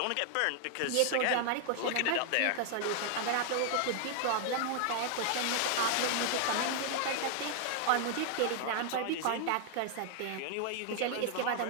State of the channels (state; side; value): different; both; correlation 0.00